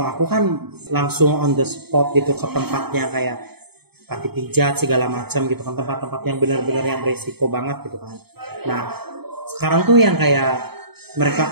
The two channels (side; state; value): left; late; 0.97 ms